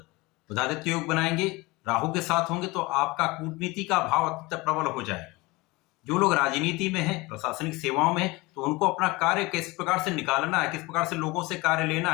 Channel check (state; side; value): quieter; right; 23.0 dB